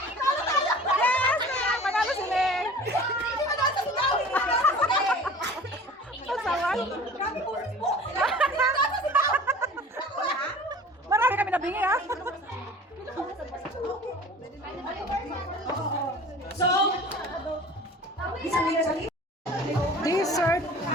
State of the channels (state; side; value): normal; both; correlation 0.43